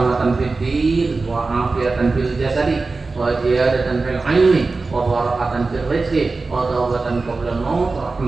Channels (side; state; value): left; quieter; 3.8 dB